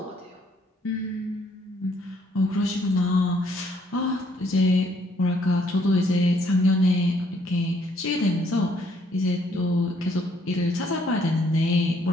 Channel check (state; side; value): normal; both; correlation 0.67